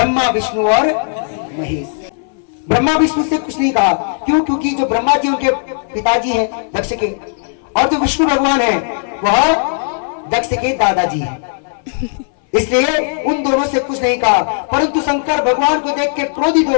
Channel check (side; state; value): right; silent; 62 dB below the other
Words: विष्णु और महेश। ब्रह्मा विष्णु से कुछ नहीं कहा, क्यों? क्योंकि जो ब्रह्मा जी उनके पिताजी हैं दक्ष के, और जो विष्णु भगवान हैं वह दक्ष के दादाजी हैं। इसलिए उन दोनों से कुछ नहीं कहा। परंतु शंकर भगवान को देख के क्रोधित